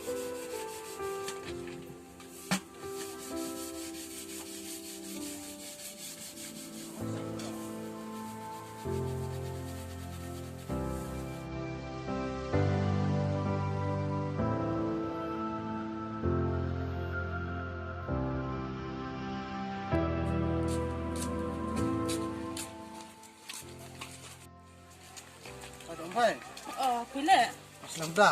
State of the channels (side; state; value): both; identical; correlation 1.00